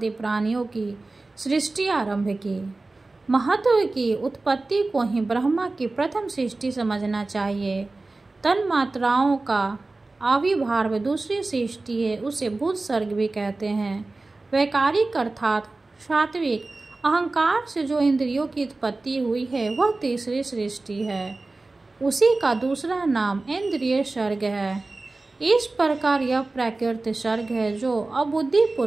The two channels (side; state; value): left; quieter; 3.3 dB